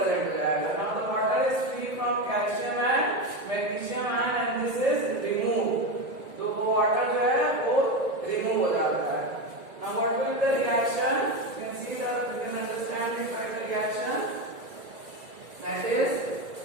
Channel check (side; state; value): left; late; 1.9 ms